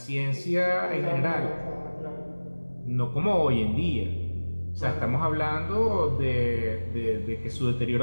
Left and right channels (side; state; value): both; inverted; correlation -1.00